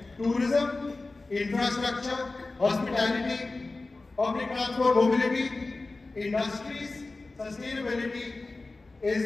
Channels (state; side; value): quieter; right; 3.4 dB